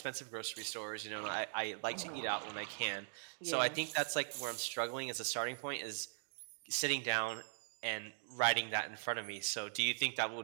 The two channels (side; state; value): left; silent; digital silence